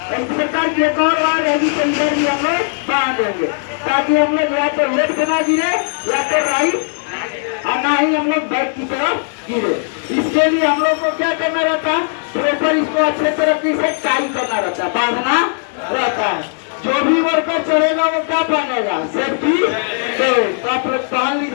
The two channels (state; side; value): silent; right; 61 dB below the other